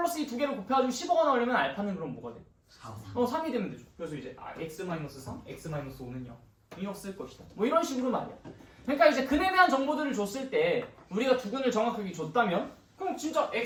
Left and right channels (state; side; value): identical; both; correlation 1.00